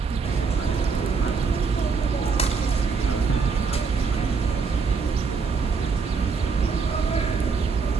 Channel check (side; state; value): left; quieter; 5.0 dB